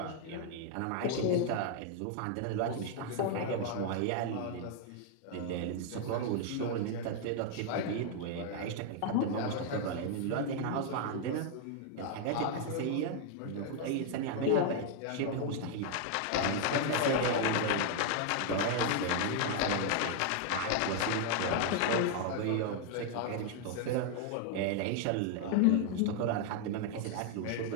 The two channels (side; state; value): both; different; correlation 0.00